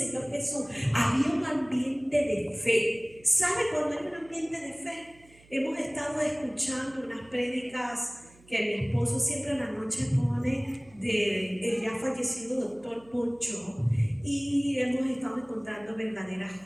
Jesús. Había un ambiente de fe. ¿Sabe cuando hay un ambiente de fe? Hemos estado escuchando unas prédicas que mi esposo siempre en la noche pone del ya fallecido doctor Poncho, y hemos estado encontrando verdaderas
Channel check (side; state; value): right; noise; hum, 27 dB below the sound